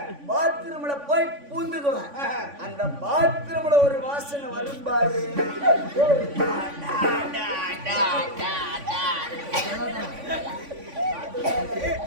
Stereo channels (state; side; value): late; left; 3.5 ms